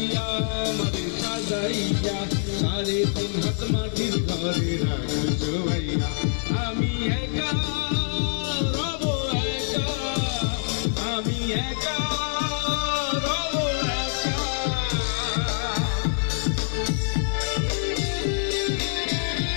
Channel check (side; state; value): right; silent; digital silence